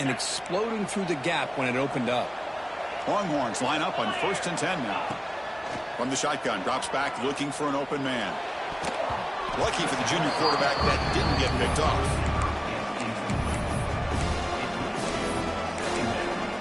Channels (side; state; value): both; identical; correlation 1.00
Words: exploding through the gap when it opened up. Longhorns line up on 1st and 10 now. From the shotgun, drops back looking for an open man. Lucky for the junior quarterback that didn't get picked off.